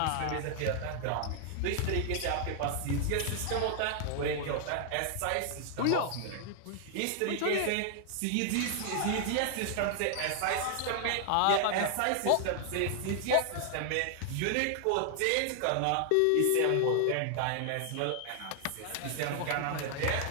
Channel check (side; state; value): both; different; correlation 0.00